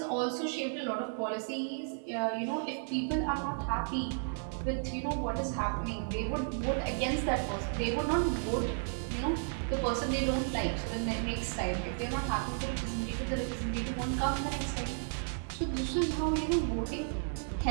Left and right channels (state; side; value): silent; left; 55 dB below the other